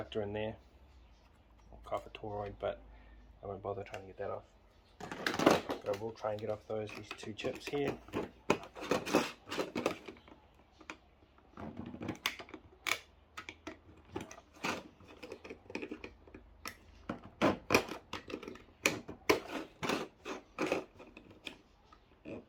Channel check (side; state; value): both; identical; correlation 1.00